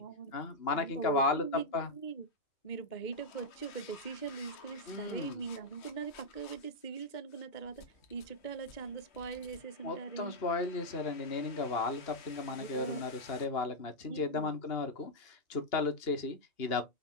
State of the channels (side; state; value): right; late; 2.8 ms